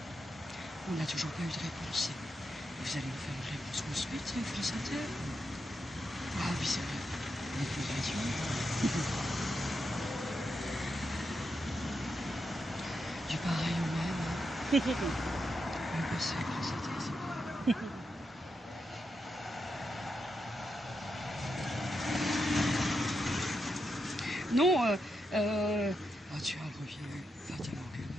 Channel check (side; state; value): both; normal; correlation 0.85